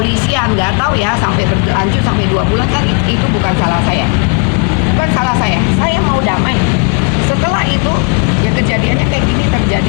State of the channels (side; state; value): right; quieter; 31.9 dB